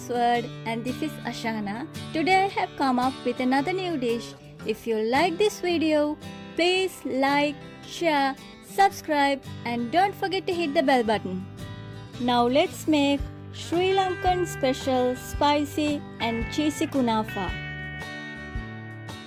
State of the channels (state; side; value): identical; both; correlation 1.00